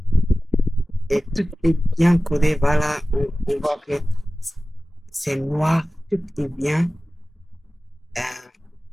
Et tout est bien codé. Voilà, on voit que c'est noir, tout est bien euh,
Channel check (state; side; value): normal; both; correlation 0.96